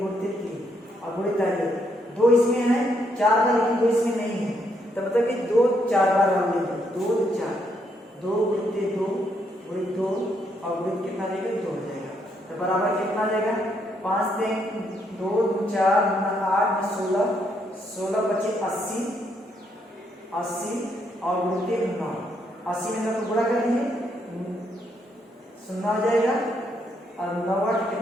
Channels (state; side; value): normal; both; correlation 0.75